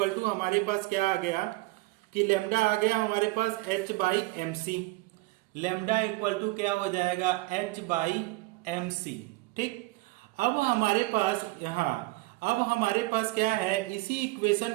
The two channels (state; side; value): quieter; left; 21.4 dB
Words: टू हमारे पास क्या आ गया कि लेमडा आ गया हमारे पास h by M C. Lambda equal to क्या हो जाएगा, h बाई एम सी, ठीक। अब हमारे पास अब हमारे पास क्या है, इसी